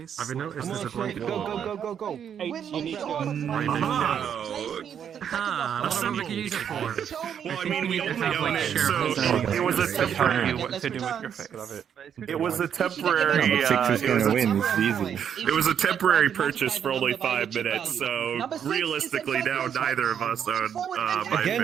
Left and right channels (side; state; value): left; quieter; 8.5 dB